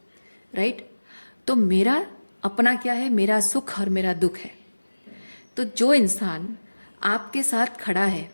राइट? तो मेरा अपना क्या है? मेरा सुख और मेरा दुख है। तो जो इंसान आपके साथ खड़ा है,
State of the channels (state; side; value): inverted; both; correlation -1.00